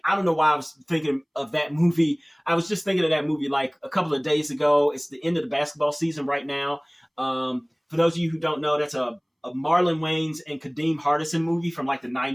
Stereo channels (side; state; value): both; identical; correlation 1.00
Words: I don't know why I was thinking of that movie. I was just thinking of that movie like a couple of days ago. It's the end of the basketball season right now. For those of you who don't know, that's a Marlon Wayans and Kadeem Hardison movie from like the